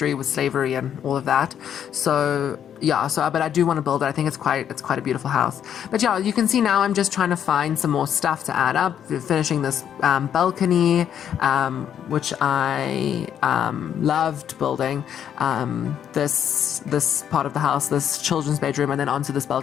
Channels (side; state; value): right; quieter; 9.2 dB